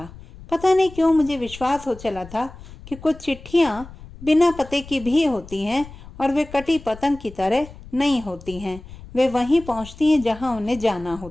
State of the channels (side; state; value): left; noise; rumble, 17 dB below the sound